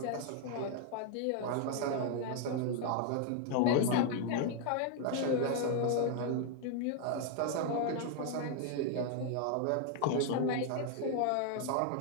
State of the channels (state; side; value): different; both; correlation 0.00